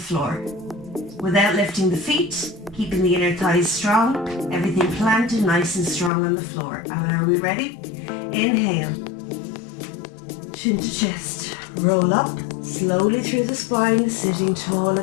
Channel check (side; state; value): right; drops out; at 6.1 s